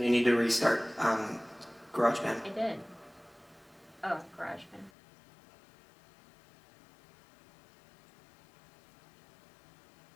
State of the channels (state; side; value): drops out; right; at 4.9 s